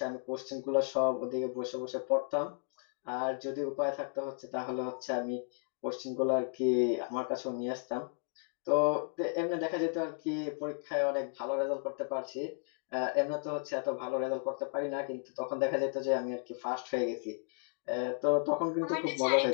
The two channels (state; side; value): silent; right; 55 dB below the other